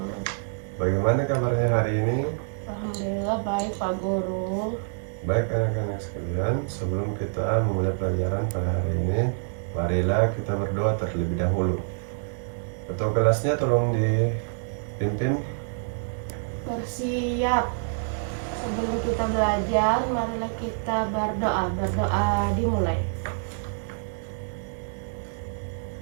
Bagaimana kabarnya hari ini? Alhamdulillah baik Pak Guru. Baik anak-anak sekalian, sebelum kita memulai pelajaran pada hari ini, marilah kita berdoa terlebih dahulu. Ketua kelasnya tolong dipimpin. Bersiap. Sebelum kita belajar, marilah kita berdoa. Berdoa dimulai.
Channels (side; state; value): left; silent; digital silence